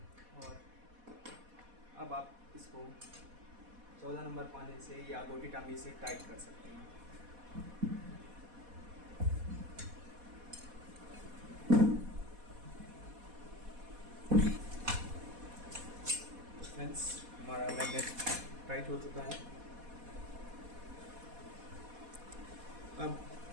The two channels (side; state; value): left; late; 4.1 ms